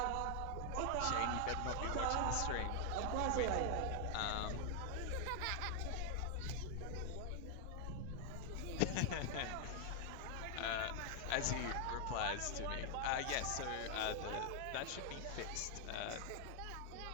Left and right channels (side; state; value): both; different; correlation 0.00